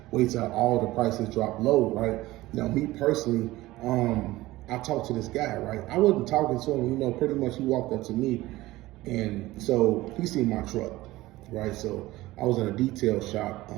Wait till all the prices drop low, right? Now, me personally, I talked to this guy, right? I wasn't talking to him, pretty much he walked up to me and so he seen my truck. Right, so I was in a detail shop,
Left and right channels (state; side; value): quieter; left; 17.9 dB